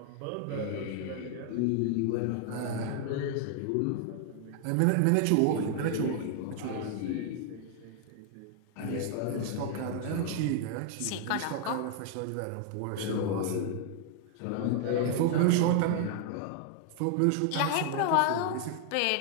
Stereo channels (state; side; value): different; both; correlation 0.00